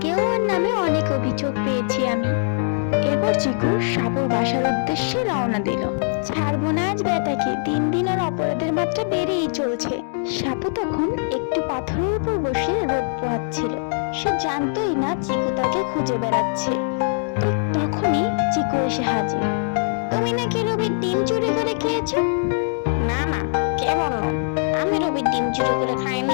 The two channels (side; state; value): right; silent; digital silence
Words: ওর নামে অনেক অভিযোগ পেয়েছি আমি। এরপর চিকু সাপুর বাসার উদ্দেশ্যে রওনা দিল। ছাড়বো না আজ বেটাকে, দিন দিন ওর অপরাধের মাত্রা বেড়েই চলছে। সাপু তখন একটি পাথরের উপর বসে রোদ পোহাচ্ছিল। সে জানতোই না চিকু তাকে খুঁজে বেড়াচ্ছে। ঠিক তখনই চিকু এসে হাজির। তুমি নাকি রবির ডিম চুরি করে খেয়েছো? না না, কে বললো? আমি রবির ডিম চুরি করে